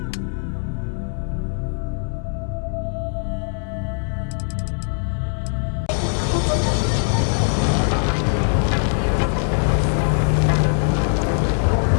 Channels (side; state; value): right; silent; digital silence